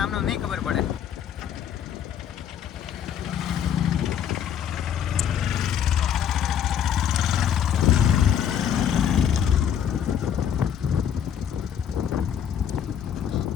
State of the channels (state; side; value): quieter; right; 9.0 dB